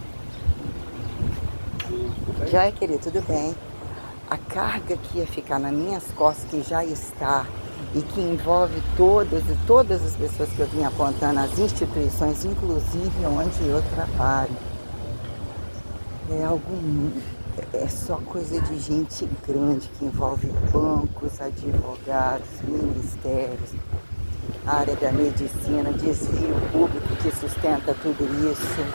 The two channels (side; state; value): both; inverted; correlation -1.00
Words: Joia, querido, tudo bem? A carga que ia ficar nas minhas costas, que já está, e que envolve todas as pessoas que eu vim apontando, as instituições, inclusive onde eu trabalho. É algo, é só coisa de gente grande, que envolve bancos, advogados, ministérios, área da medicina, desvio público que sustenta tudo isso.